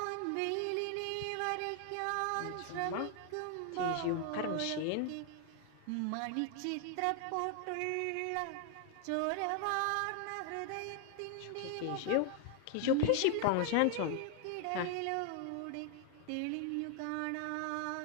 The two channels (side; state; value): both; different; correlation 0.00